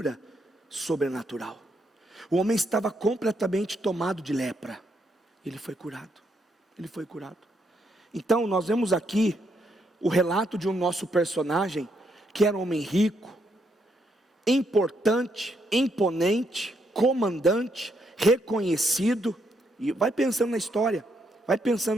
sobrenatural. O homem estava completamente tomado de lepra. Ele foi curado. Ele foi curado. Então nós vemos aqui o relato de um nosso personagem, que era um homem rico, importante, imponente, comandante, reconhecido. E vai pensando na história, vai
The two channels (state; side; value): normal; both; correlation 0.76